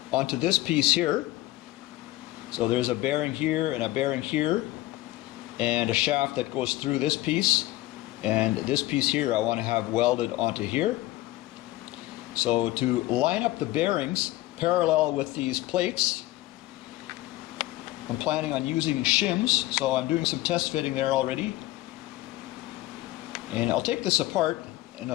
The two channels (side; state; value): right; quieter; 17.3 dB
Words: onto this piece here. So there's a bearing here and a bearing here, and a shaft that goes through this piece, and this piece here I want to have welded onto here. So to line up the bearings parallel with these plates, I'm planning on using shims, so I'm doing some test fitting there already. And I'll take this apart and